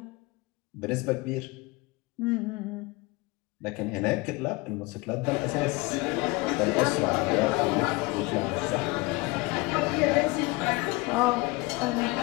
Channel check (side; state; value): right; quieter; 23.6 dB